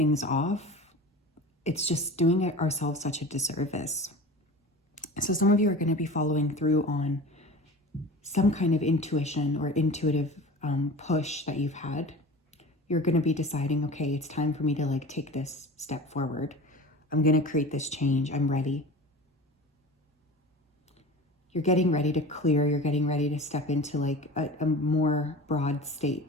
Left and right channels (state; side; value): normal; both; correlation 0.36